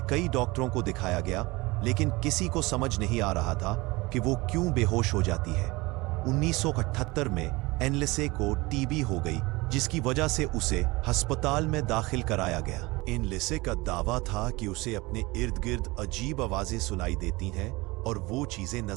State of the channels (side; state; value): left; quieter; 22.7 dB